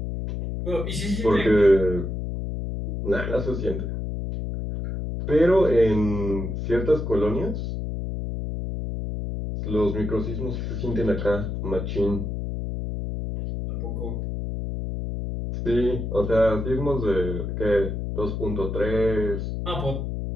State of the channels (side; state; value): left; noise; hum, 4 dB below the sound